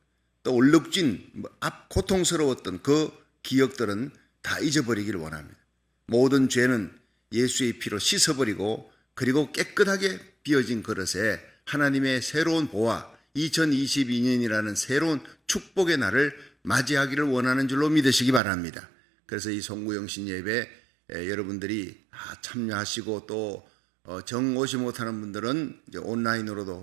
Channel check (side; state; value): left; drops out; at 18.4 s